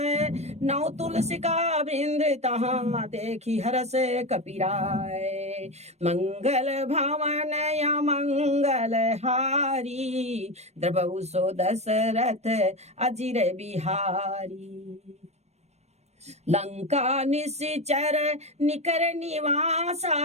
नौ तुलसी का वृंद तहाँ देखी हरस कपिराय। मंगल भवन या मंगल हारी द्रबहु सो दशरथ अजिर बिहारी। लंका निश्चर निकर निवासा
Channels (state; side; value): late; left; 0.32 ms